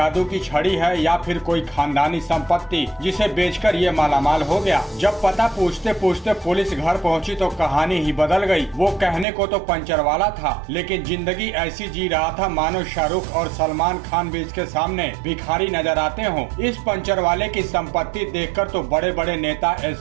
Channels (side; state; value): left; drops out; at 9.2 s